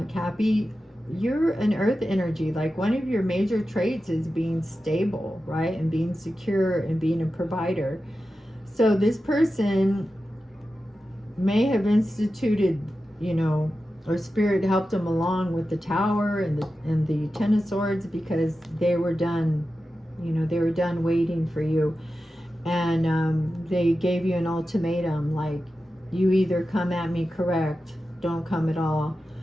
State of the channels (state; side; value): normal; both; correlation 0.92